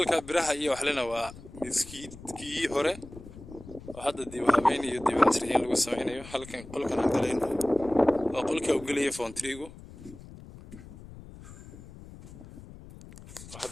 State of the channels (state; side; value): noise; left; rumble, 17 dB below the sound